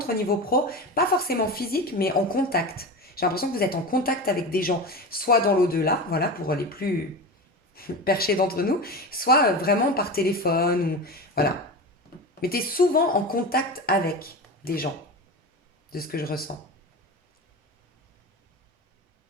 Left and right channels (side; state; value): both; normal; correlation 0.27